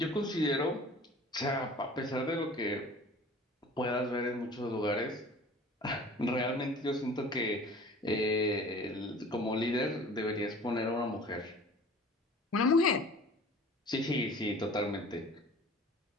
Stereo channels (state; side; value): normal; both; correlation 0.45